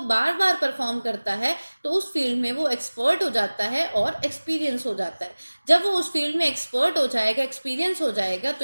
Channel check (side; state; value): both; inverted; correlation -1.00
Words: बार बार परफॉर्म करता है, तो उस फील्ड में वो एक्सपर्ट हो जाता है और एक्सपीरियंस हो जाता है। जब वो उस फील्ड में एक्सपर्ट हो जाएगा, एक्सपीरियंस हो जाएगा,